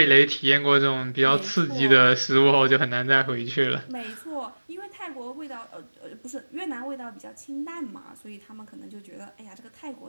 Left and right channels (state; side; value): inverted; both; correlation -1.00